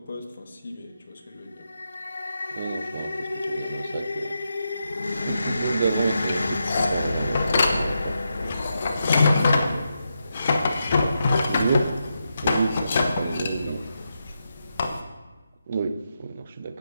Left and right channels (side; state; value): both; inverted; correlation -0.85